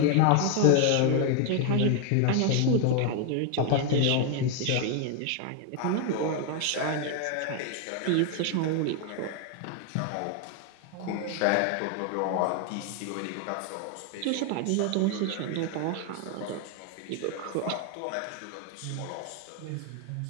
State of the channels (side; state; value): both; different; correlation 0.01